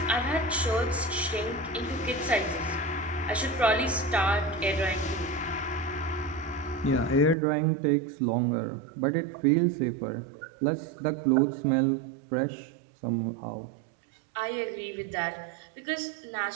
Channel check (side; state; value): left; drops out; at 7.4 s